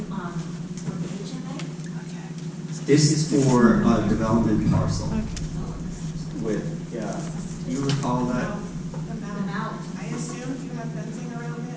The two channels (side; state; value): both; identical; correlation 1.00